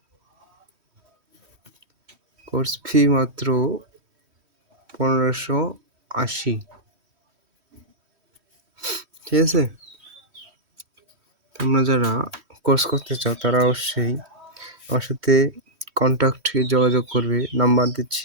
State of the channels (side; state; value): left; late; 3.1 ms